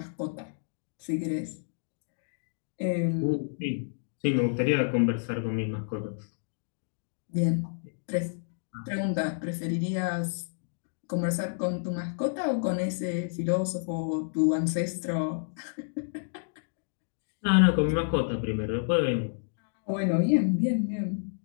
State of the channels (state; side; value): silent; right; digital silence